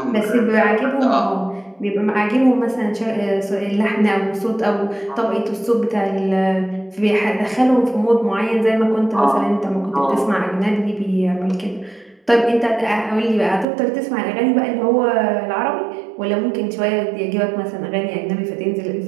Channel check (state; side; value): drops out; left; at 13.7 s